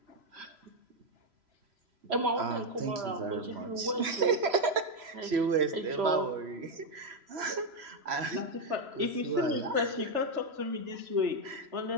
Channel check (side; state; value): left; late; 3.0 ms